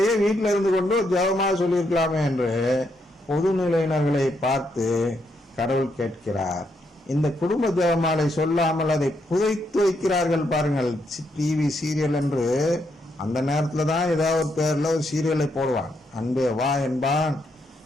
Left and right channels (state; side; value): normal; both; correlation 0.78